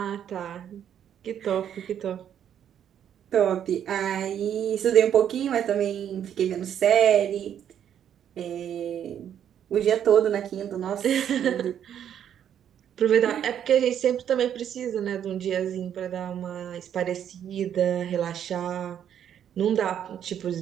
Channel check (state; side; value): quieter; left; 9.5 dB